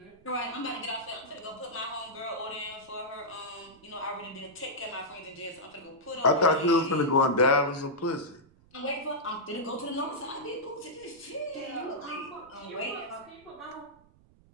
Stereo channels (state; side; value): noise; right; rumble, 28 dB below the sound